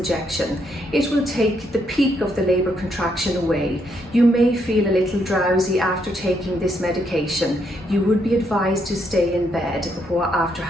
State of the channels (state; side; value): normal; both; correlation 0.75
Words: It will take the peak of the labour contraction away. You may feel a little drowsy after taking this medication. You would be advised to stay in bed after